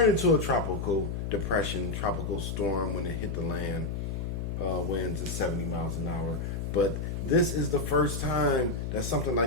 into a tropical depression, tropical storm when it hit the land. Winds at 70 miles an hour. But this is the first time that something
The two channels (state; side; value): noise; left; hum, 3 dB below the sound